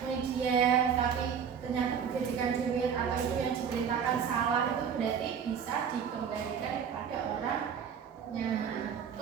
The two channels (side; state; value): left; quieter; 7.4 dB